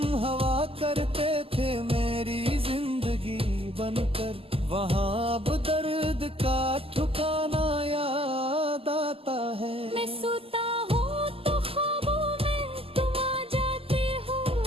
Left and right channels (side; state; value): left; late; 0.27 ms